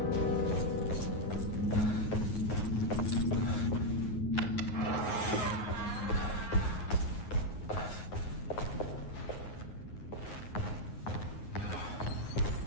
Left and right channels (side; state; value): right; late; 9.5 ms